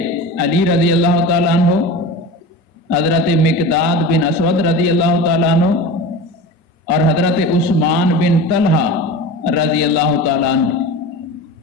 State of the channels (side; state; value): both; normal; correlation 0.31